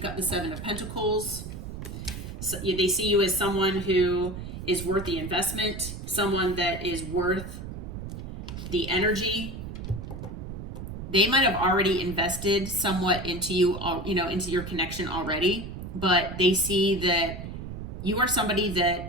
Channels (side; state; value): right; noise; rumble, 8 dB below the sound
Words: got the 7 of Pentacles. So they see you as someone who is worth the investment, someone that is worth the energy. They might have already invested somewhat into you, you know, into your connection already, but they see that you are somebody